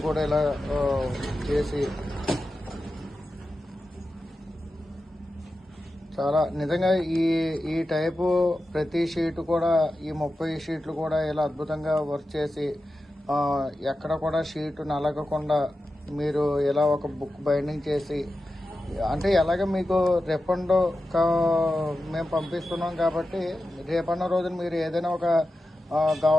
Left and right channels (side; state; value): both; normal; correlation 0.92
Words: కూడా ఇలా చేసి చాలా నిజంగా ఈ టైపు ప్రతి షీట్ కూడా ఈ 30 షీట్లు కూడా ఇలా అద్భుతంగా వర్క్ చేసి ఎక్కడ కూడా షీట్ నలగకుండా మీరు ఇలా ఒక బుక్ బైండింగ్ చేసి, అంటే ఎలాగ మీకు రిఫండ్ మేము పంపిస్తున్నాం కాబట్టి రేపన్న రోజున మీరు ఏదైనా ఒక